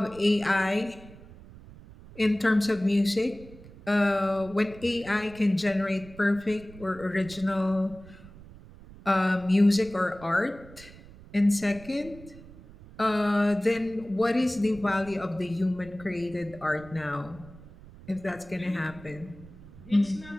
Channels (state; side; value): noise; right; rumble, 19 dB below the sound